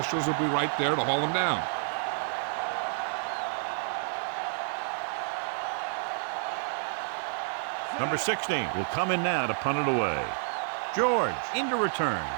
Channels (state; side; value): silent; left; digital silence